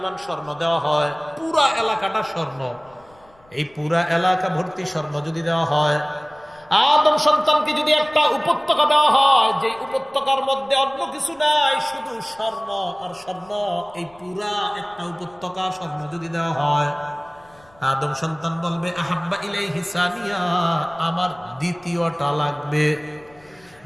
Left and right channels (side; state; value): left; noise; rumble, 29 dB below the sound